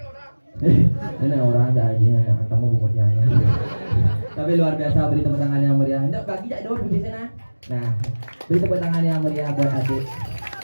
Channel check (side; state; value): both; inverted; correlation -1.00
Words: Ini orang aja kamu bungkutnya. Tapi luar biasa, beri tepuk tangan yang meriah. Ndak bagi jak dulu di sana. Nah, beri tepuk tangan yang meriah buat adik.